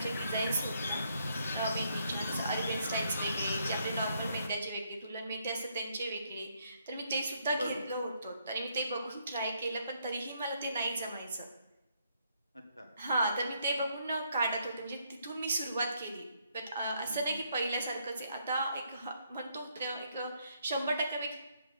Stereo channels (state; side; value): inverted; both; correlation -0.73